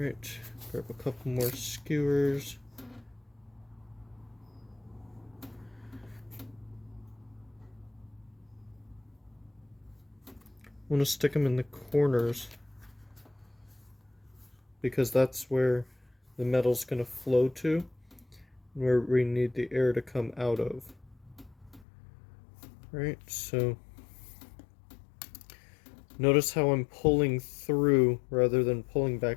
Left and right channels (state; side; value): drops out; right; at 21.9 s